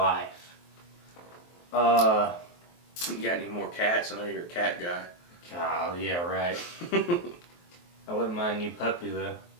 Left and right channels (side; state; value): right; late; 23 ms